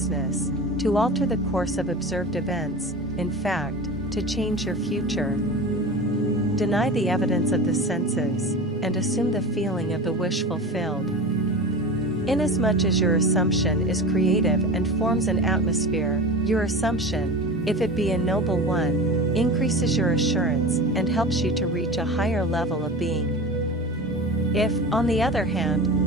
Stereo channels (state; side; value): normal; both; correlation 0.31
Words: to alter the course of observed events, in fact, to change your future. Deny the evidence of the senses, and assume the feeling of the wish fulfilled. Inasmuch as your assumption is creative and forms an atmosphere, your assumption, if it be a noble one, increases your assurance and helps you to reach a higher level of being. If, on the other